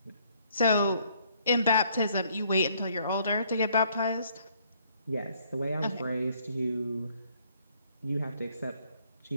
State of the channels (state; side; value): inverted; both; correlation -0.65